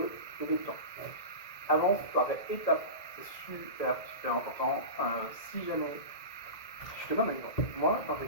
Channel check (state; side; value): late; right; 1.9 ms